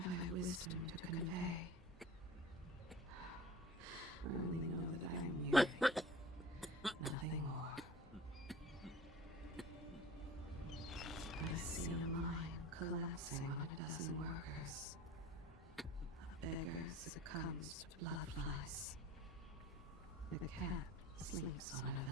Wisdom to convey. I only know that I am weary. Nothing more. I see a mine collapsing on a dozen workers. A beggar succumbs to blood flies. The cat sleeps on a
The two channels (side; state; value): both; normal; correlation 0.42